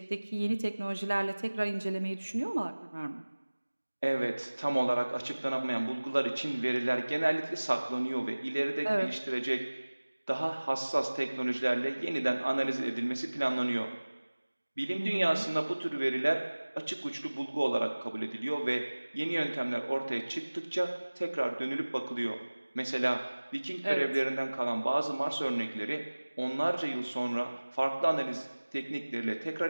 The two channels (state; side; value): inverted; both; correlation -1.00